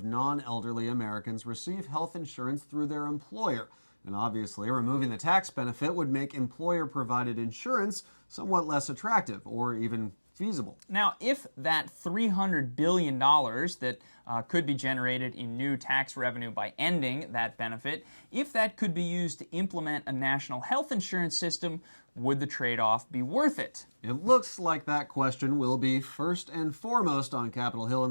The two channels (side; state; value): both; inverted; correlation -1.00